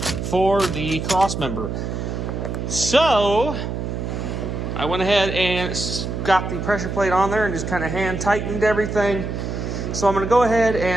the cross member. So I went ahead and got the pressure plate on there and just kind of hand tightened everything. So I'm going to go ahead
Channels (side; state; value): right; noise; hum, 4 dB below the sound